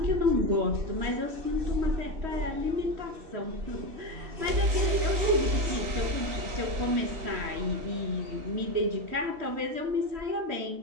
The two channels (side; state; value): left; late; 3.1 ms